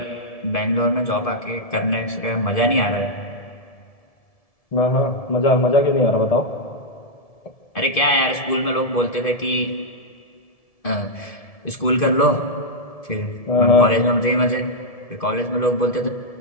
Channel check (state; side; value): late; right; 1.7 ms